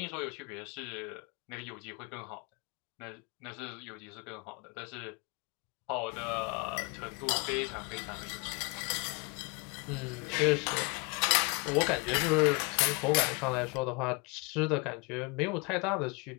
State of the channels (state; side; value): quieter; right; 30.1 dB